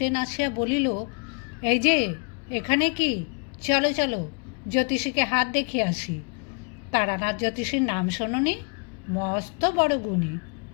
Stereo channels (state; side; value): quieter; right; 37.8 dB